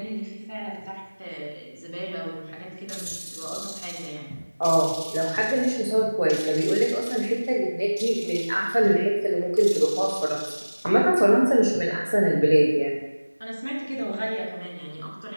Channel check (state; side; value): inverted; both; correlation -1.00